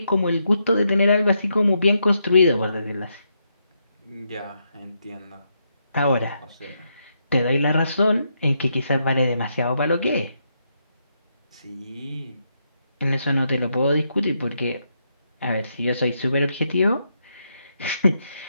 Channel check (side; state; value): both; inverted; correlation -0.80